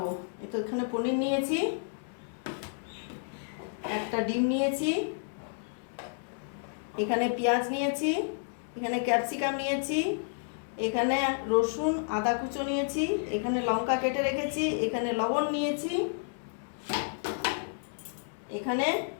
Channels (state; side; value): silent; right; 57 dB below the other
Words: তো এখানে পনির নিয়েছি, একটা ডিম নিয়েছি, এখানে পেঁয়াজ নিয়েছি, এখানে ক্যাপসিকাম নিয়েছি, এখানে রসুন আদা কুচো নিয়েছি, এখানে লঙ্কা কেটে রেখেছি, এখানে লবণ নিয়েছি, এখানে